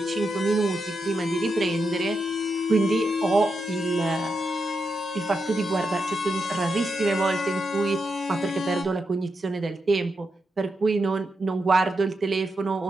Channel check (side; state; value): both; normal; correlation 0.85